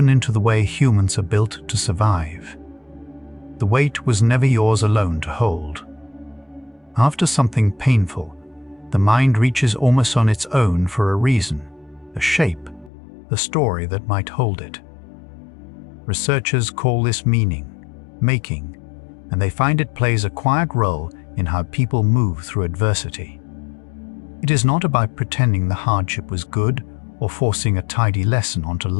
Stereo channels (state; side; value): drops out; right; at 12.9 s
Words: into the way humans are built to survive. The weight was never yours alone to hold. After something painful, the mind reaches almost on its own for a reason, a shape, the story that might hold it. Researchers call this meaning, making, and they find it plays a quiet role in how people move through adversity. It is not about pretending the hardship was good or forcing a tidy lesson onto